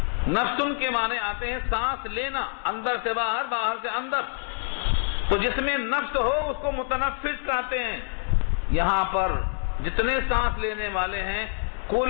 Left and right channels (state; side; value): silent; right; digital silence